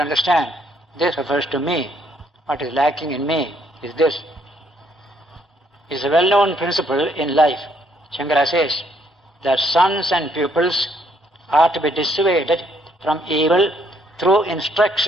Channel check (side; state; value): both; normal; correlation 0.69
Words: this refers to me. What is lacking in me is this. It's a well-known principle in life. Shankara says that sons and pupils are to be dissuaded from evil through